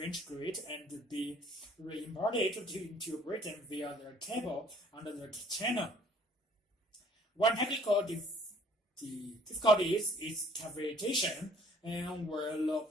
grid and be re-imported into Britain via the cable under the channel. One technical difficulty is cavitation. and where low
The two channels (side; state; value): both; normal; correlation 0.57